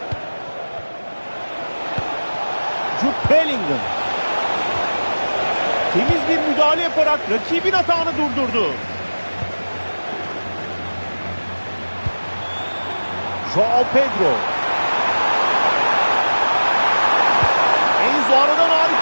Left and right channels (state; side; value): inverted; both; correlation -1.00